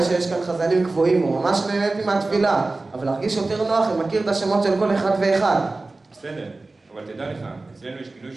שיש כאן חזנים קבועים, וממש נהניתי מהתפילה, אבל להרגיש יותר נוח אם מכיר את השמות של כל אחד ואחד. בסדר, אבל תדע לך, אצלנו יש כינוי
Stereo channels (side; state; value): left; quieter; 3.3 dB